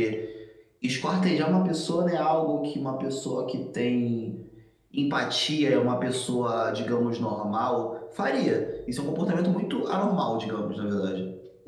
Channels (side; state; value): both; identical; correlation 1.00